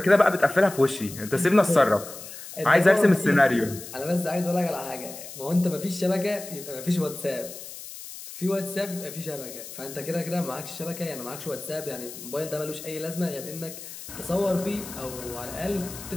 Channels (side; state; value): left; noise; hiss, 13 dB below the sound